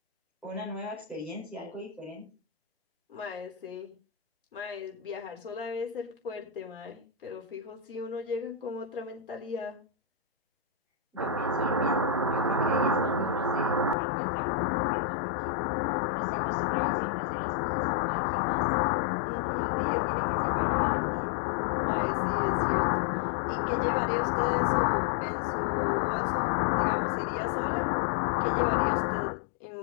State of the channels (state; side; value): drops out; right; at 14.0 s